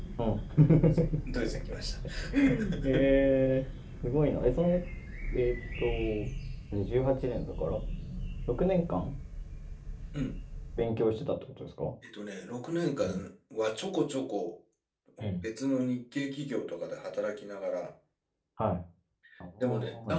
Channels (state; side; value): identical; both; correlation 1.00